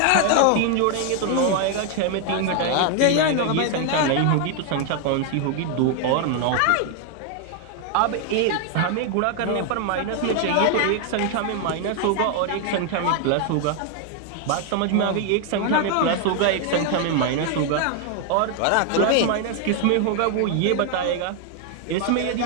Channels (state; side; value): different; both; correlation 0.00